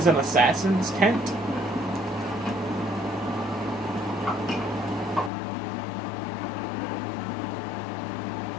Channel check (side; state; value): right; drops out; at 5.3 s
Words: an assassin's tent.